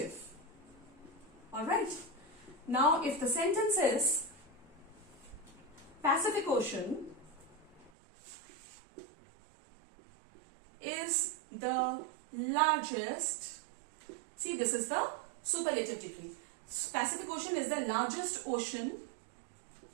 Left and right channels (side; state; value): left; drops out; at 7.9 s